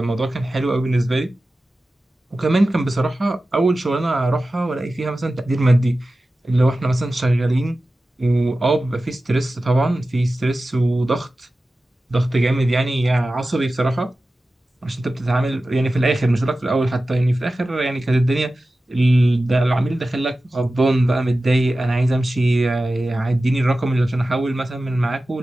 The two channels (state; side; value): normal; both; correlation 0.95